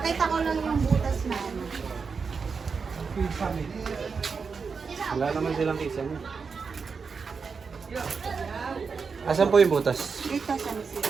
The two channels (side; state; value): left; quieter; 5.3 dB